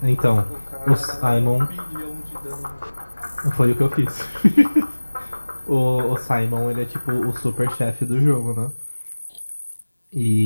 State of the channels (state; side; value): inverted; both; correlation -1.00